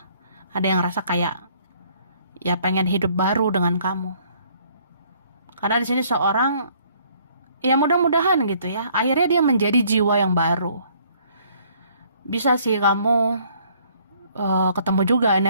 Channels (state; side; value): inverted; both; correlation -0.62